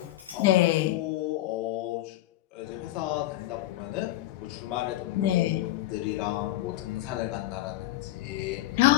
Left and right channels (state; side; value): quieter; right; 15.5 dB